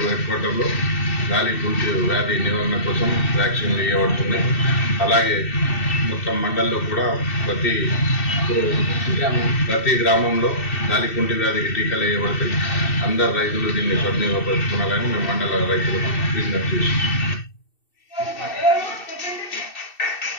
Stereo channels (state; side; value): late; right; 2.7 ms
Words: హెడ్ క్వార్టర్లో గాలికుంటు వ్యాధి నివారణ కోసం వ్యాక్సిన్లు ఇవ్వబడుతున్నాయి. అలాగే మొత్తం మండల్లో కూడా ప్రతి గ్రామంలో గాలికుంటు వ్యాధికి టీకాలు వేయబడతాయి. అందరు రైతులు దీన్ని సద్వినియోగపరుచుకోవాలని మేము మండల రైతులకు విజ్ఞప్తి చేస్తున్నాం.